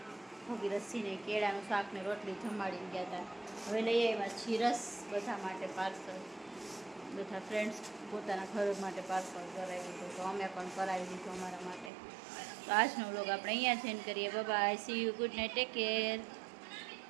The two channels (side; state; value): left; drops out; at 11.9 s